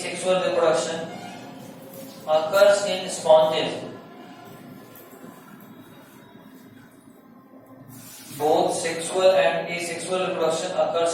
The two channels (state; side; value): identical; both; correlation 1.00